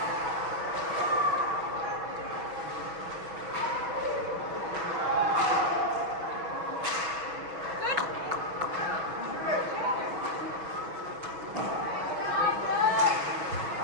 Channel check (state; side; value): late; left; 6.1 ms